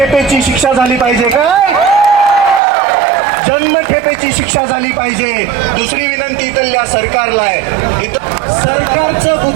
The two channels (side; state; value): left; drops out; at 2.6 s